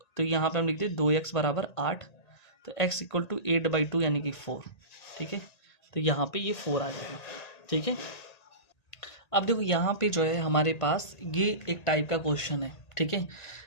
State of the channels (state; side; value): late; right; 1.9 ms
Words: यहाँ पे हम लिखते 2x बराबर 8, तो x इक्वल टू 8/2 यानी कि 4। ठीक है, तो यहाँ पे ये 4 आ जाएगा। ठीक है, अब देखो यहाँ पे जो है हमारे पास ये एक टाइप का क्वेश्चन है। ठीक है,